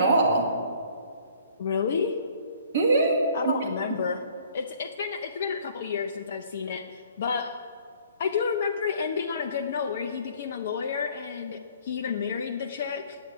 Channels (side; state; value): both; inverted; correlation -0.57